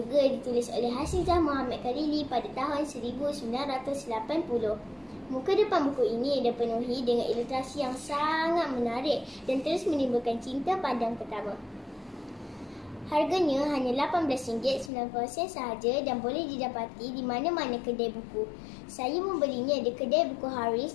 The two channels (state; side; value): drops out; right; at 14.9 s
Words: ditulis oleh Hasizah Muhammad Karili pada tahun 1980. Muka depan buku ini dipenuhi dengan ilustrasi yang sangat menarik dan terus menimbulkan cinta pandang pertama. Harganya hanya RM18.90 sahaja dan boleh didapati di mana-mana kedai buku. Saya membelinya di kedai buku